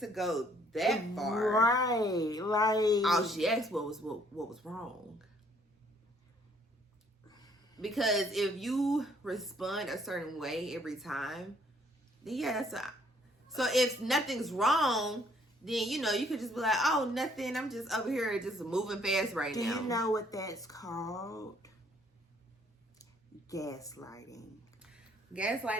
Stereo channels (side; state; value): both; normal; correlation 0.64